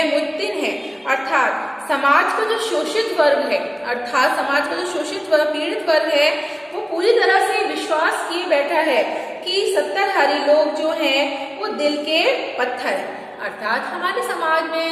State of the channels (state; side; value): identical; both; correlation 1.00